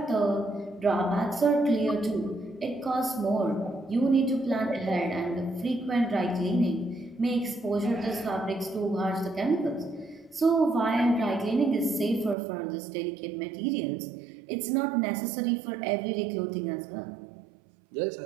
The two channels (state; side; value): drops out; left; at 12.4 s